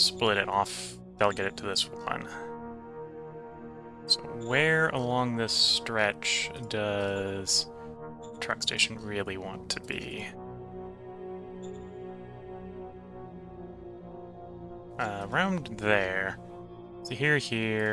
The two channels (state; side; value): identical; both; correlation 1.00